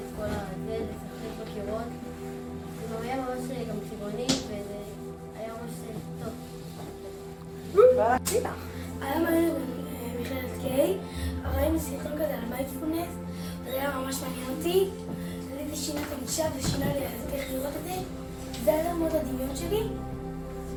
כל הזה, לשחק בקירות. זה היה ממש גם צבעוני, וזה היה ממש טוב. היום היינו במכללת קיי, ראינו סרטון כזה על מיינדפולנס, זה היה ממש מעניין אותי. זה שינה את הגישה ושינה לי איך לראות את זה. זה היה מאוד הדמיון שלי,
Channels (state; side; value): identical; both; correlation 1.00